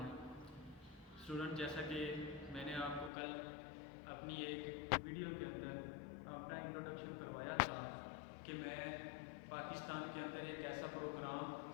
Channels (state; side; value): drops out; right; at 3.1 s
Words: है। स्टूडेंट, जैसा कि मैंने आपको कल अपनी एक वीडियो के अंदर अपना इंट्रोडक्शन करवाया था कि मैं पाकिस्तान के अंदर एक ऐसा